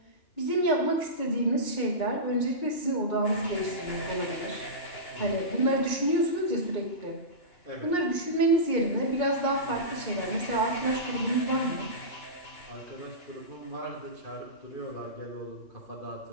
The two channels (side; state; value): right; late; 2.9 ms